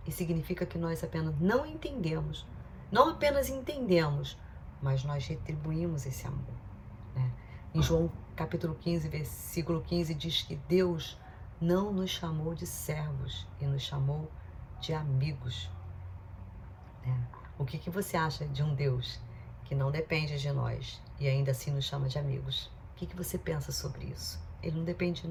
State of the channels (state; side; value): identical; both; correlation 1.00